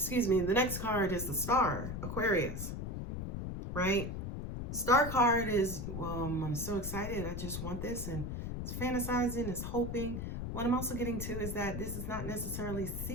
me. The next card is the Star, Aquarius, right? Star card is, well, I'm so excited. I just want this, and it's fantasizing, it's hoping. What I'm also getting to is that this is not necessarily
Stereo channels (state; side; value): noise; left; rumble, 5 dB below the sound